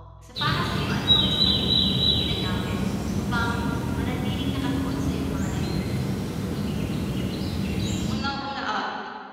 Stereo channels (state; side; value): identical; both; correlation 1.00